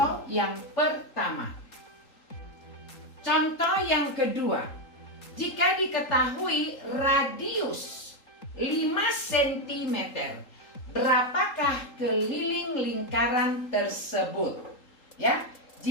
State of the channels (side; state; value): right; late; 3.8 ms